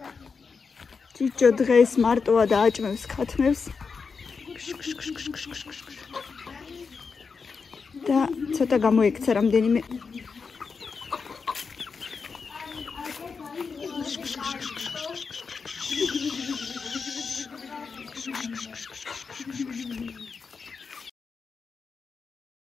ჭიჭო დღეს მარტოა და აჭმევს ქათმებს. და ცოტა გამოიქცა რამდენიმე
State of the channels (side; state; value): right; quieter; 5.2 dB